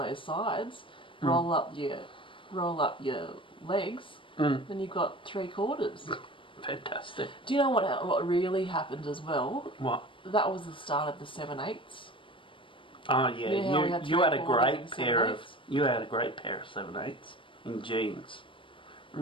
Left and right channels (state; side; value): late; right; 0.25 ms